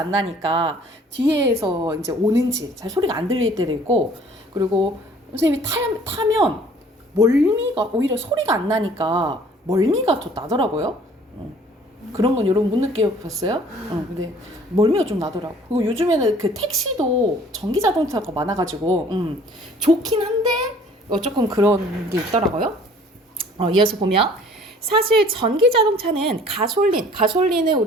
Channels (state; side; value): normal; both; correlation 0.54